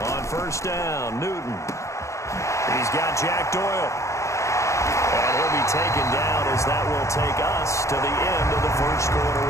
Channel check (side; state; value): right; late; 0.15 ms